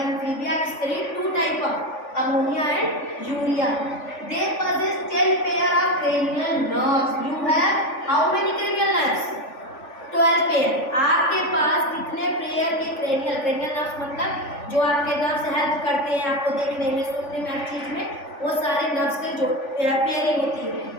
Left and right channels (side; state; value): right; late; 3.5 ms